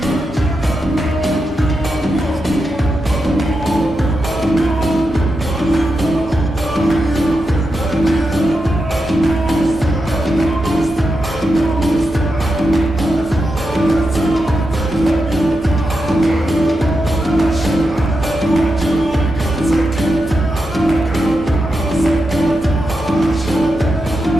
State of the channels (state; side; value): normal; both; correlation 0.87